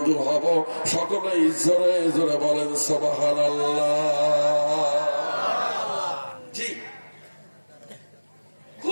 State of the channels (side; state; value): both; inverted; correlation -1.00